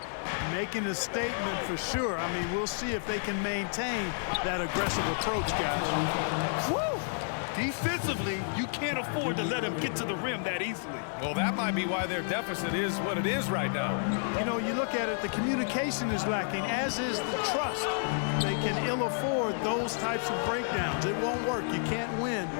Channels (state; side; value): silent; right; digital silence